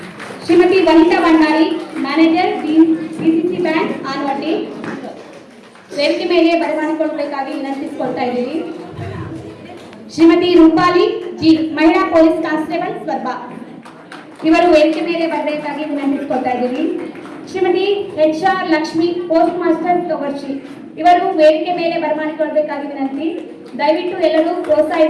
Shrimati Vanitha Bhandari manager DCC bank Anavatti ವೇದಿಕೆ ಮೇಲೆ ಬರಮಾಡಿಕೊಳ್ಳಬೇಕಾಗಿ ವಿನಂತಿಸಿಕೊಳ್ತಾ ಇದ್ದೀವಿ. ಶ್ರೀಮತಿ ರೂಪಾಲಿ G ಮಹಿಳಾ ಪೊಲೀಸ್ ಕಾನ್ಸ್ಟೇಬಲ್ ಸ್ವರ್ಬ ಇವರು ವೇದಿಕೆ ಮೇಲೆ ಬರಬೇಕಾಗಿ ವಿನಂತಿಸಿಕೊಳ್ತಾ ಇದ್ದೀವಿ. Shrimati HR Lakshmi post master Togarshi ಇವರು ವೇದಿಕೆ ಮೇಲೆ ಬರಮಾಡಿಕೊಳ್ಳಬೇಕಾಗಿ ವಿನಂತಿ. ದಯವಿಟ್ಟು ಎಲ್ಲರೂ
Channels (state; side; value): identical; both; correlation 1.00